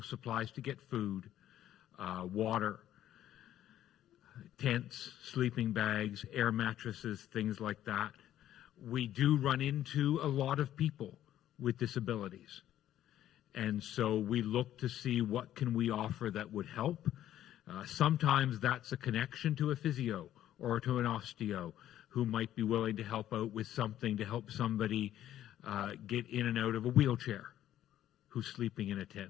supplies to get food, water, tents, sleeping bags, air mattresses, things like that. We do run into a lot of people with disabilities. And so we look to see what can we offer that would help. Sometimes that's a connection to a physio or to an osteo who might be willing to help out with something to help somebody get in and out of a wheelchair who's sleeping in a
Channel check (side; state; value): right; quieter; 12.1 dB